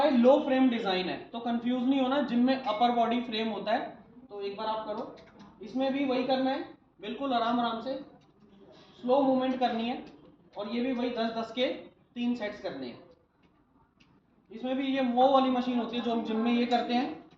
ये लो फ्रेम डिजाइन है। तो कंफ्यूज नहीं होना, जिम में अपर बॉडी फ्रेम होता है। तो एक बार आप करो, इसमें भी वही करना है, बिल्कुल आराम आराम से स्लो मूवमेंट करनी है। और ये भी वही 10-10 के 3 सेट्स करने हैं। इसमें भी ये वो वाली मशीन होती है जो हम जिम में ये करते हैं,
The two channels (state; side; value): identical; both; correlation 1.00